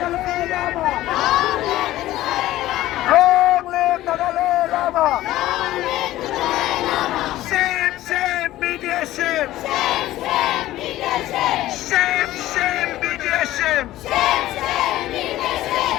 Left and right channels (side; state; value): right; quieter; 15.3 dB